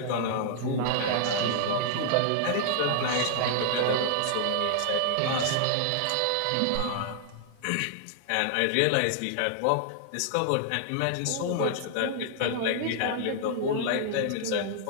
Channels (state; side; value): different; both; correlation -0.01